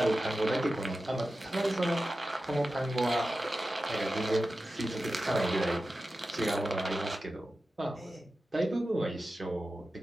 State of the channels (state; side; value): normal; both; correlation 0.93